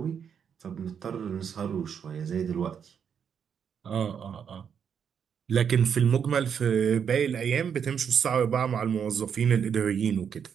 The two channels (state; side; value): quieter; left; 7.5 dB